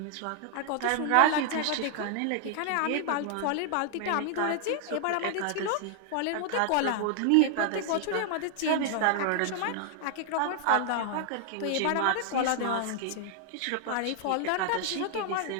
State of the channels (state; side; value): different; both; correlation 0.00